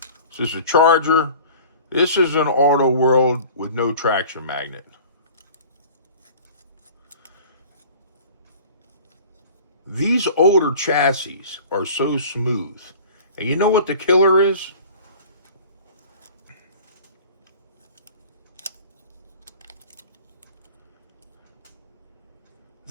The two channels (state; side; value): inverted; both; correlation -0.44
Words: this is a Charger. This is an Auto World with no traction magnet. These older chassis are so smooth. And you know what the killer is?